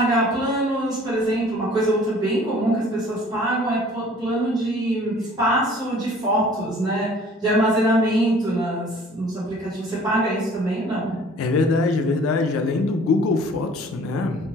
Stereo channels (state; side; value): normal; both; correlation 0.51